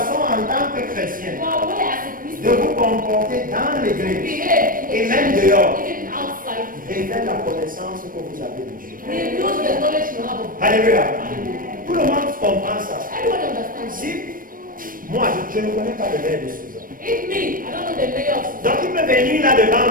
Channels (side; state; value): left; late; 0.41 ms